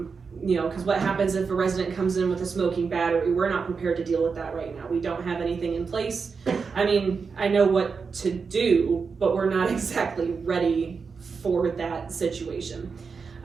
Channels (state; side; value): quieter; left; 5.3 dB